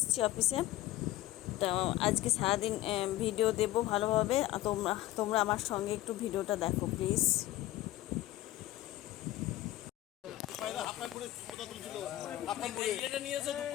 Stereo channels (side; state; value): right; quieter; 15.8 dB